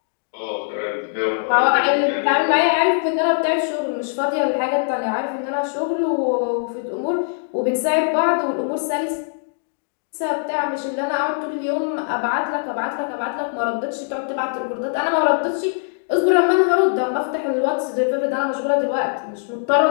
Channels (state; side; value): silent; right; digital silence